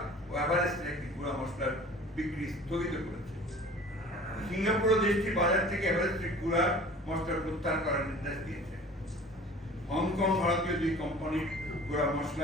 ও এভারেস্টের একটি গুঁড়া মশলার বিক্রি স্থগিত করেছে। সিঙ্গাপুর দেশটি বাজার থেকে এভারেস্টের গুঁড়া মশলা প্রত্যাহার করার নির্দেশ দিয়েছে। হংকং ভারতীয় 2 কোম্পানির গুঁড়া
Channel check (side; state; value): both; normal; correlation 0.45